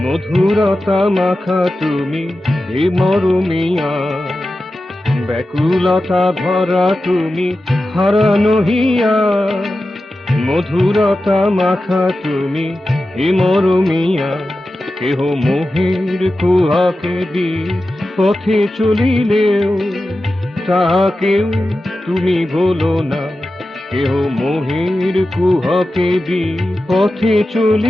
মধুরতা মাখা তুমি হে মরমিয়া। ব্যাকুলতা ভরা তুমি হারানো হিয়া, মধুরতা মাখা তুমি হে মরমিয়া। কেহ মোহের কুহাকে দি পথে চলিলেও তাহাকেও তুমি ভোলো না। কেহ মোহের কুহকে দি পথে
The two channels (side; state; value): both; normal; correlation 0.93